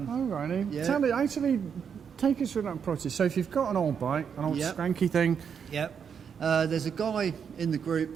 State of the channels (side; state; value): left; quieter; 7.1 dB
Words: righty. Yeah. Tell me, actually, take us through that process. So if you've got an old bike, an old skanky thing. Yep. There's a guy in the